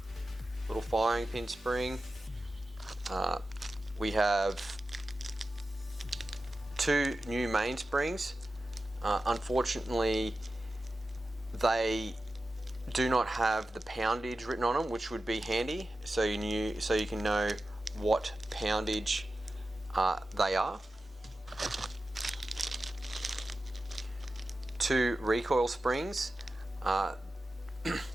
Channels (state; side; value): normal; both; correlation 0.93